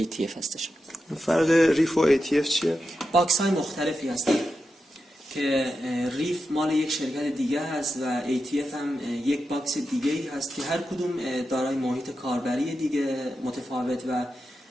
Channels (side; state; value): both; normal; correlation 0.89